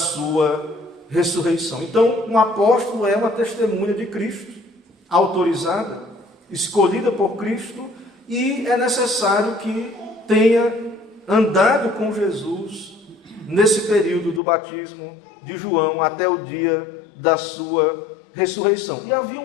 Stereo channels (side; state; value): right; drops out; at 14.4 s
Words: ressurreição. Então, um apóstolo é uma testemunha de Cristo, autorizada, escolhida por Cristo, e é necessário que tenha andado com Jesus nesse período do batismo de João até o dia da sua ressurreição. E